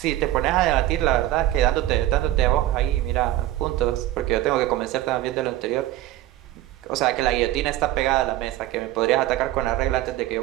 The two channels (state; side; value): quieter; left; 15.0 dB